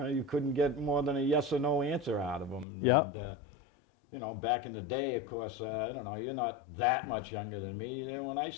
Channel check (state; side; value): drops out; right; at 2.7 s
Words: couldn't get more than a yes or no answer out of them. Yep. And, back in the day, of course, I don't know, you're not that much younger than me. When I